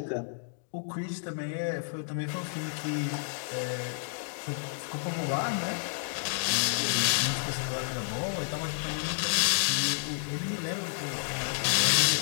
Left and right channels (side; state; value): right; silent; digital silence